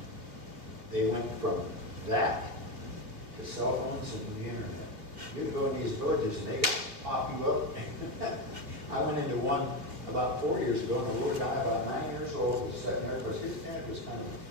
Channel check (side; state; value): left; late; 3.0 ms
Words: they went from that to cell phones and the internet. You go in these villages and they pop you up. I went into one about 4 years ago, and a little guy about 9 years old was sitting there because his dad was kind of